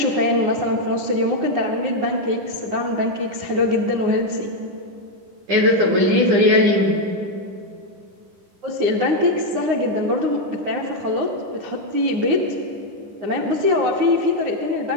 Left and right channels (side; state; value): left; late; 9.6 ms